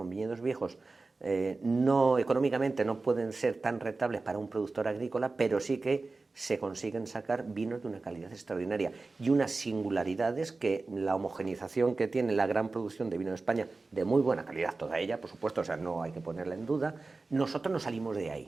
viñedos viejos, no económicamente no pueden ser tan rentables para un productor agrícola, pero sí que se consiguen sacar vinos de una calidad extraordinaria y unas singularidades que la homogenización que tiene la gran producción de vino de España, de muy buena calidad toda ella, por supuesto, o sea, no hay que ponerla en duda, nosotros no salimos de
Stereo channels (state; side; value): quieter; left; 3.6 dB